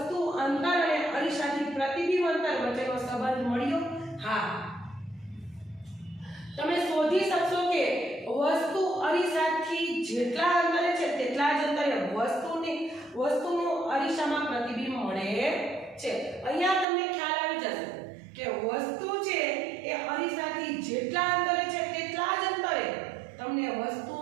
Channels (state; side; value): drops out; left; at 16.9 s